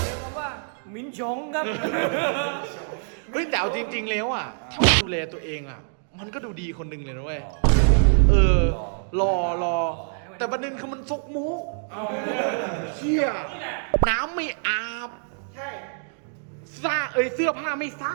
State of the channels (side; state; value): left; silent; digital silence